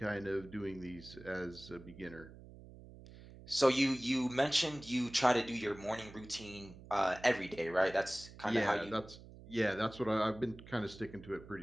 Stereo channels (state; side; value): noise; right; hum, 18 dB below the sound